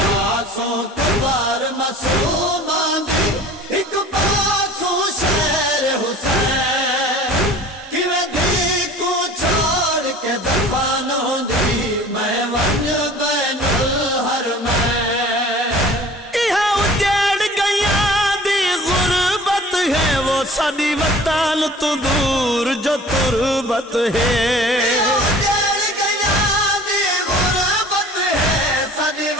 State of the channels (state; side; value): normal; both; correlation 0.45